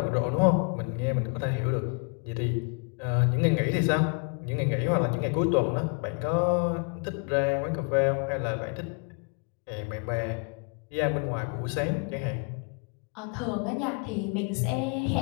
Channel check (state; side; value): quieter; right; 35.6 dB